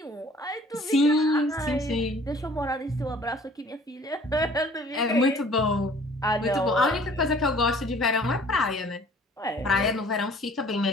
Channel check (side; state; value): both; normal; correlation 0.53